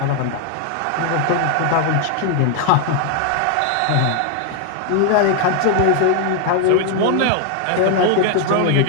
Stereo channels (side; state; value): both; different; correlation 0.00